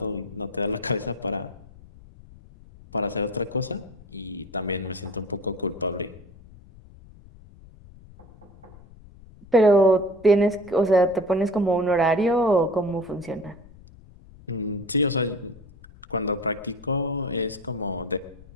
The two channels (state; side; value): noise; left; rumble, 22 dB below the sound